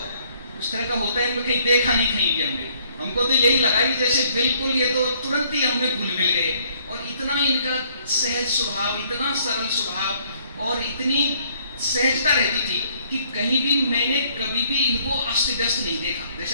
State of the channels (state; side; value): inverted; both; correlation -0.63